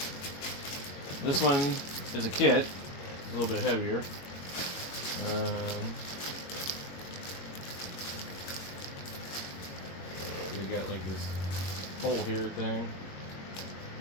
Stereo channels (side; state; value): right; late; 22 ms